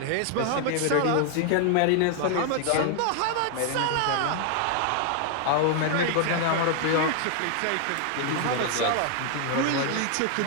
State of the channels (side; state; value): both; different; correlation 0.00